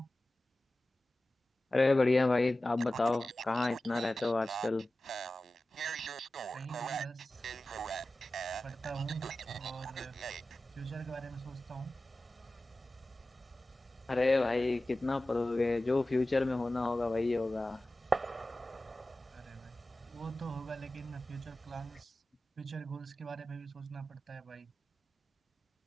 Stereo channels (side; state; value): both; normal; correlation 0.95